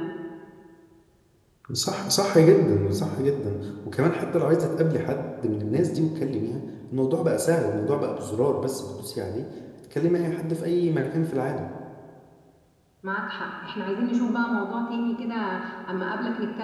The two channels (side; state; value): both; identical; correlation 1.00